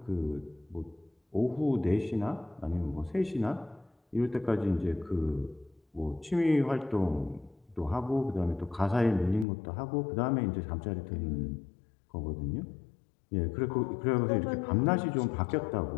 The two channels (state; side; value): drops out; right; at 9.5 s